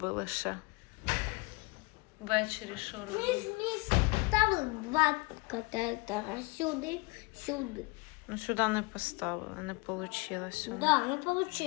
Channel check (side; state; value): right; quieter; 26.7 dB